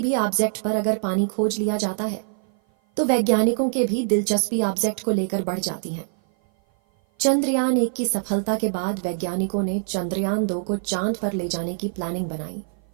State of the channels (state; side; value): silent; left; 56 dB below the other